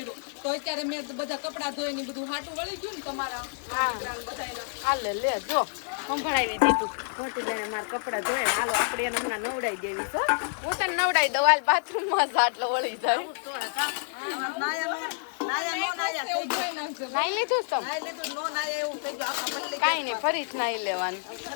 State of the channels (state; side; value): silent; right; digital silence